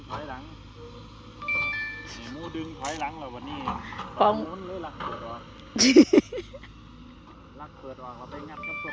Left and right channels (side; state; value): both; identical; correlation 1.00